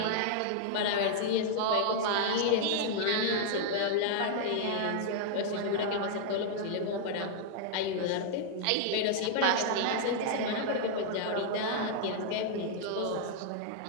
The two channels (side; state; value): both; different; correlation -0.01